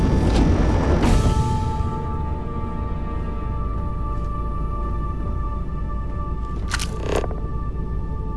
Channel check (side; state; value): both; identical; correlation 1.00